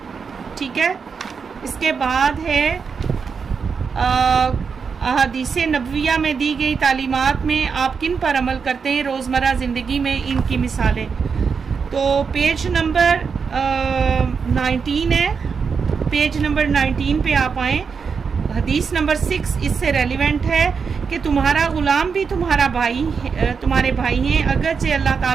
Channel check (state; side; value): quieter; left; 5.8 dB